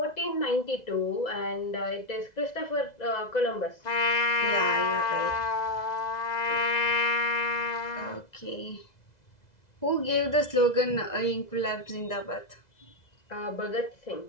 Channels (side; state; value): right; late; 2.0 ms